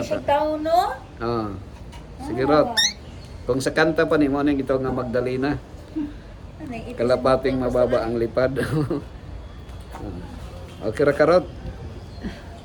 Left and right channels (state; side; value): identical; both; correlation 1.00